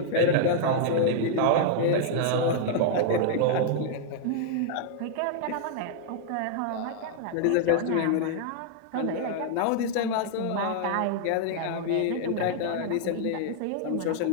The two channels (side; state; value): both; different; correlation -0.01